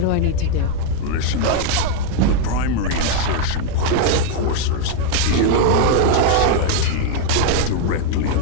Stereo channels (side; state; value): both; different; correlation 0.00